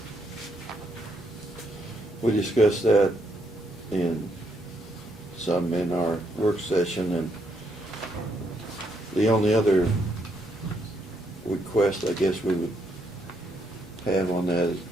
We discussed that in our work session, and the only other request I guess we would have on that is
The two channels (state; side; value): normal; both; correlation 0.75